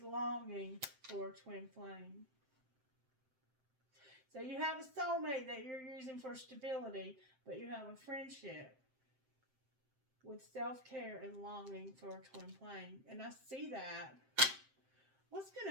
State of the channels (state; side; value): late; left; 7.7 ms